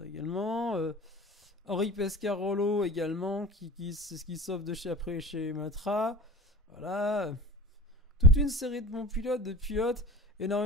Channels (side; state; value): both; normal; correlation 0.39